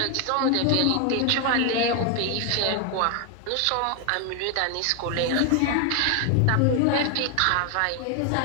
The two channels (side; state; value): both; different; correlation 0.00